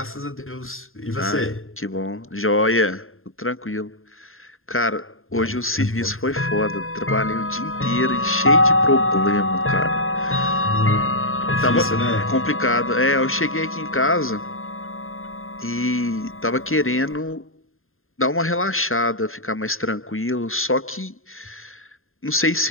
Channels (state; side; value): late; right; 0.61 ms